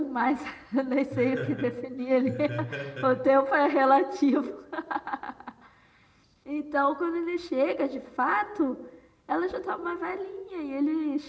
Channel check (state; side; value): identical; both; correlation 1.00